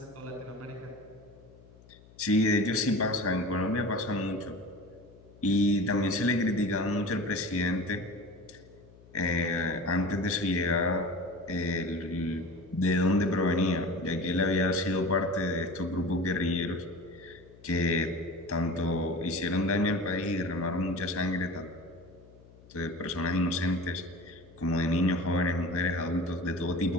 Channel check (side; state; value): left; noise; hum, 24 dB below the sound